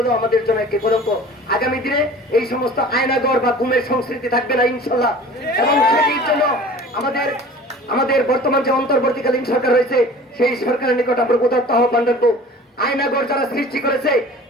আমাদের জন্য একটি কলঙ্ক। আগামী দিনে এই সমস্ত আয়নাগর বা গুমের সংস্কৃতি থাকবে না ইনশাল্লাহ। এবং সেটির জন্য আমাদের বর্তমান যে অন্তর্বর্তীকালীন সরকার রয়েছে, সেই সরকারের নিকট আমরা উদাত্ত আহ্বান রাখবো। আয়নাগর যারা সৃষ্টি করেছে,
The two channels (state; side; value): normal; both; correlation 0.44